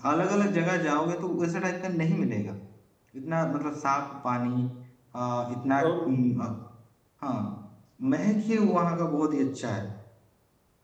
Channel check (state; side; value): identical; both; correlation 1.00